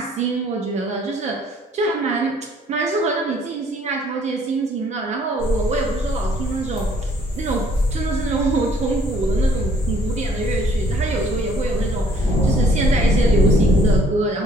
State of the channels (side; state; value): both; normal; correlation 0.60